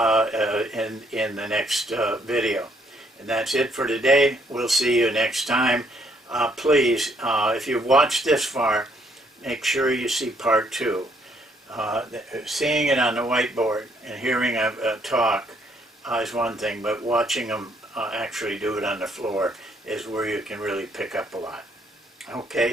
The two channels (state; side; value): normal; both; correlation 0.68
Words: in the next video. And that's it for today. We'll see you next time. Please, if you've watched this far, make sure you see part 2. Seeing it on the whiteboard and hearing a talk is one thing, but watching them actually do it on the floor is where you can really pick up a lot.